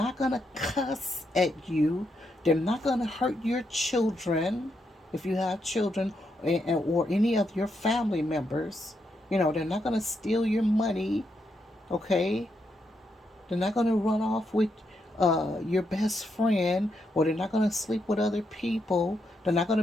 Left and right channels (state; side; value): normal; both; correlation 0.81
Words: going to cuss at you. They're not going to hurt your children, if you have children, or any of your family members. They're not going to steal your money. Okay, they're not going to run off with your best friend, or they're not going to sleep with other people. They're not going to